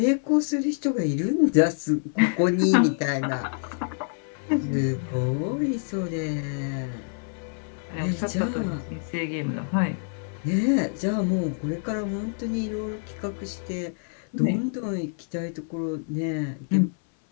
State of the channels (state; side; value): silent; right; 59 dB below the other